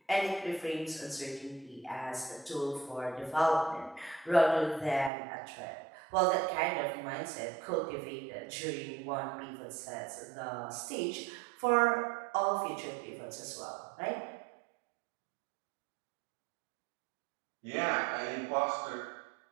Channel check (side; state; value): left; drops out; at 5.1 s